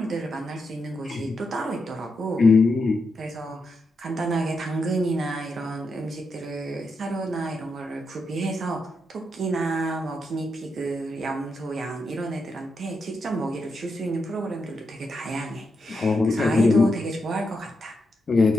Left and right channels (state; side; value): normal; both; correlation 0.84